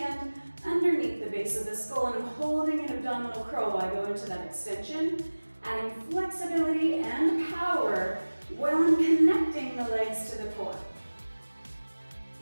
underneath the base of the skull and I'm holding an abdominal curl while I go into that extension, adding flexibility and power while I'm connecting the legs to the core.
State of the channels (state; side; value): inverted; both; correlation -1.00